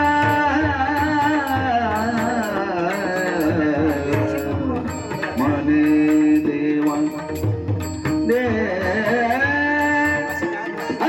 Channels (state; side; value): identical; both; correlation 1.00